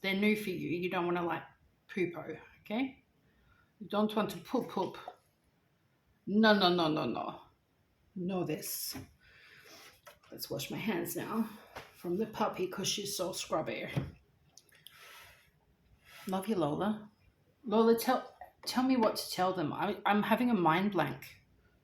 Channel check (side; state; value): both; identical; correlation 1.00